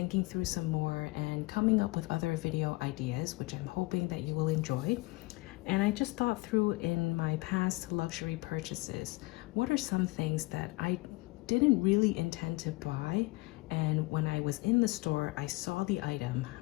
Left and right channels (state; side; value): quieter; right; 23.4 dB